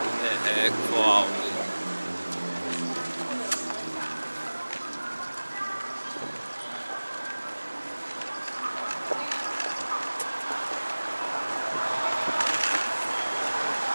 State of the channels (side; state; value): both; inverted; correlation -1.00